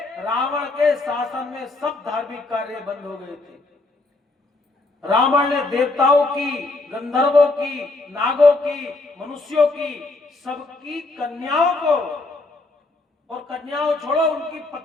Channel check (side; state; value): right; quieter; 3.2 dB